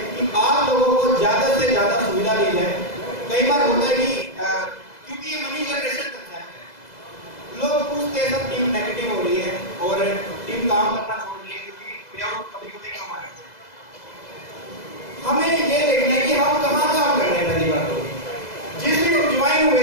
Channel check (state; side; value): late; right; 2.0 ms